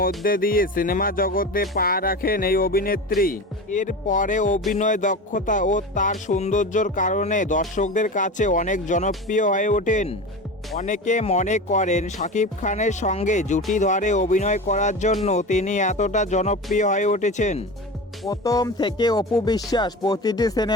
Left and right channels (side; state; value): both; normal; correlation 0.29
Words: দিয়ে সিনেমা জগতে পা রাখেন এই অভিনেত্রী। এরপরে অভিনয় দক্ষতা ও তার সৌন্দর্যের কারণে দর্শকদের কাছে অনেক জনপ্রিয় হয়ে ওঠেন। অনেকে মনে করেন শাকিব খানের সঙ্গে জুটি ধরে অভিনয় করার জন্য তিনি এতটা জনপ্রিয় হয়ে উঠেছেন। প্রথম থেকে অপু বিশ্বাস প্রতিটি